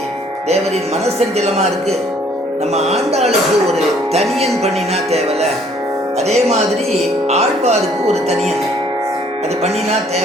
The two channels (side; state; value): both; normal; correlation 0.61